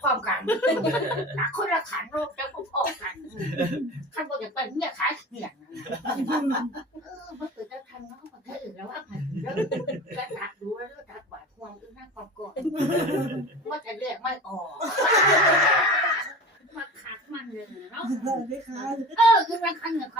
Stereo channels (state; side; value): normal; both; correlation 0.35